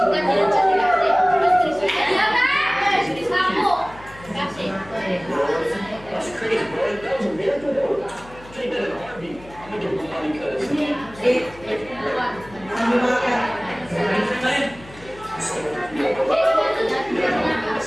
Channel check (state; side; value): noise; left; hum, 20 dB below the sound